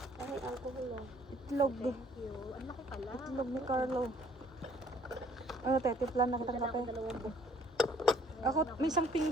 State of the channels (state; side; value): normal; both; correlation 0.60